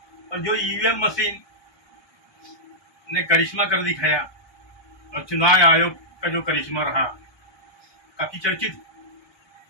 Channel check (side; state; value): right; late; 1.2 ms